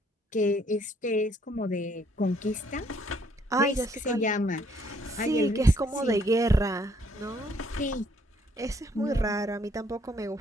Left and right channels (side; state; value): both; normal; correlation 0.66